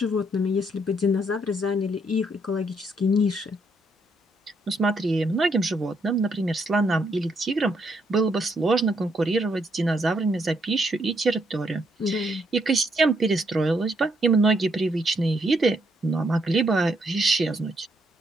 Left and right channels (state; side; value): normal; both; correlation 0.74